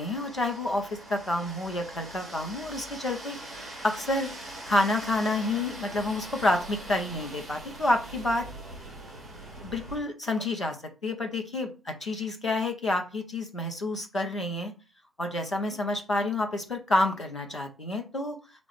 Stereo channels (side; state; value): both; normal; correlation 0.72